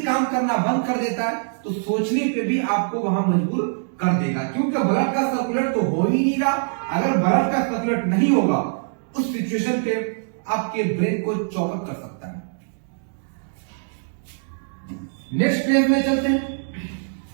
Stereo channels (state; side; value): silent; left; digital silence